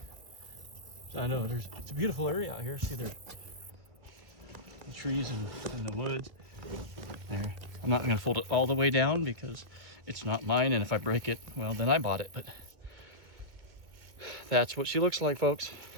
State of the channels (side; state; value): left; late; 2.1 ms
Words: I know it's a beautiful area out here. See the trees and the woods there. I'm not gonna fold it all the way down because it's not mine, and if I break it, well, then I bought it. But that's what she looks like, folks.